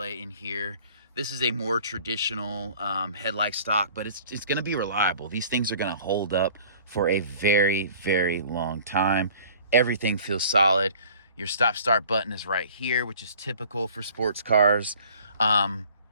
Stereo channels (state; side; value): inverted; both; correlation -0.50